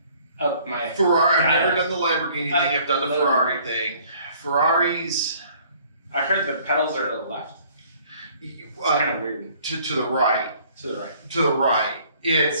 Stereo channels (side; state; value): both; inverted; correlation -0.57